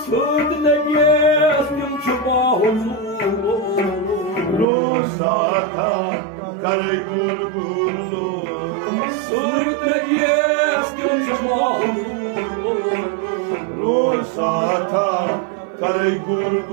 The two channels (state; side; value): drops out; left; at 4.7 s